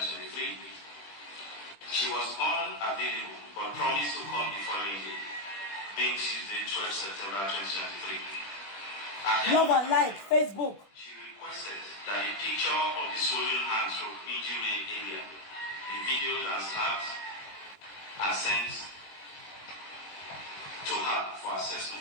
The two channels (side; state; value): right; late; 20 ms